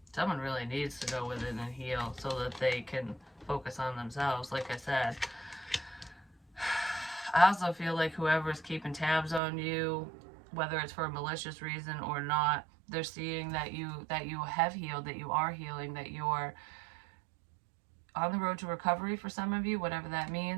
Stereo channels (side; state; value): left; drops out; at 9.4 s